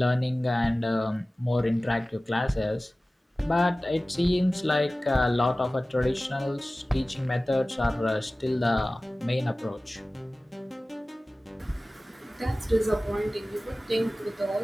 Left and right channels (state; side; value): normal; both; correlation 0.97